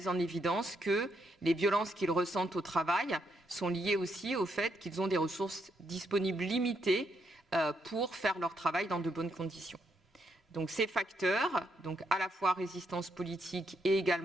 en évidence que les violences qu'ils ressentent au travail sont liées aussi au fait qu'ils ont des ressources disponibles limitées pour faire leur travail dans de bonnes conditions. Donc ces facteurs, donc à la fois résistance politique et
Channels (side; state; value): both; normal; correlation 0.77